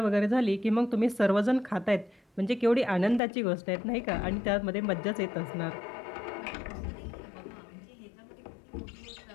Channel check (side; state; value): right; drops out; at 3.2 s